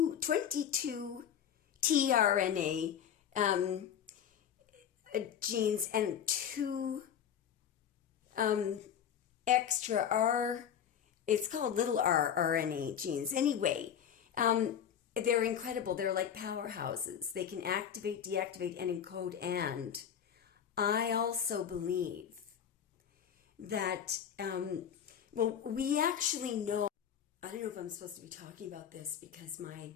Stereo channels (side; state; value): right; quieter; 8.8 dB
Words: tRNA genes and 2 extra R, it's called little r RNA genes. Anyway, they're incredible. They're like powerhouses. They can activate, deactivate, and encode. And I also believe that, we actually know, I don't know if I'm supposed to be talking about this because